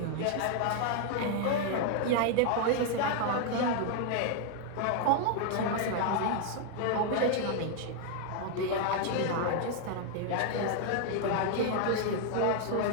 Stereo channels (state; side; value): different; both; correlation 0.00